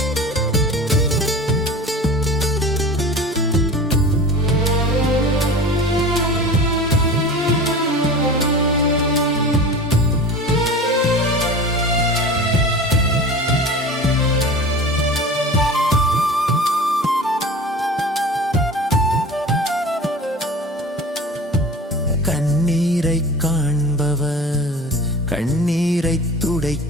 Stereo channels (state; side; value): normal; both; correlation 0.36